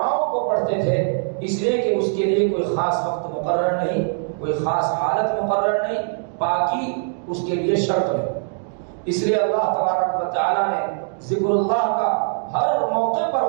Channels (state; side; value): silent; left; digital silence